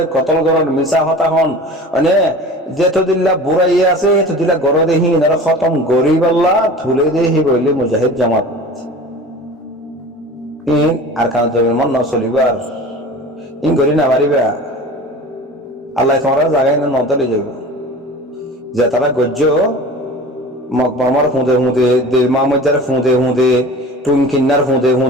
কতল করন মিশা হতা হন মানে যেত দিল্লা বুড়াইয়ে আছে তো দিল্লা গর দেহীন আর খতম গরিব আল্লাহ থুলে দেহি বললে মুজাহিদ জামাত ইন আর কান জমির মন না চলিবার ইন গরি না পারিবা আল্লাহ তোমার জায়গায় না নতলে যাব যে তারা গজ্জ মকবরমার ফুঁদে ফুঁদে মামজার ফুঁদে ফুঁদে টুনকিন্নার ফুঁদে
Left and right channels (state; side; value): normal; both; correlation 0.38